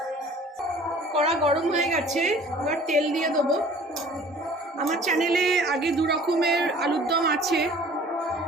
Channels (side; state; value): both; normal; correlation 0.50